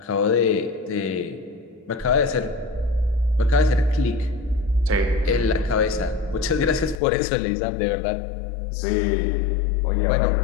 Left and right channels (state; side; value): drops out; right; at 7.0 s